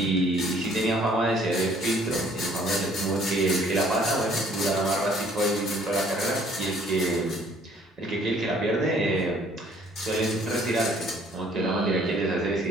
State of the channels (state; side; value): normal; both; correlation 0.59